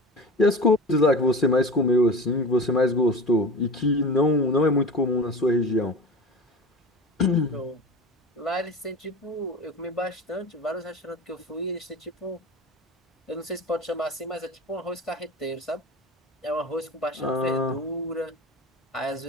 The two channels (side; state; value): both; normal; correlation 0.33